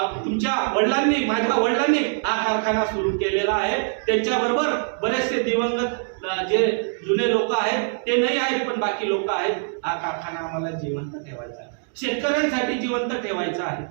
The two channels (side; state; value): left; silent; digital silence